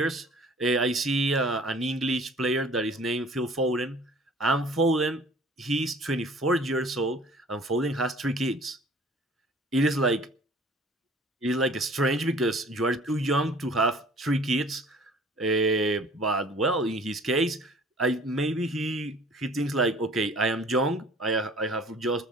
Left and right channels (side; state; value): both; normal; correlation 0.50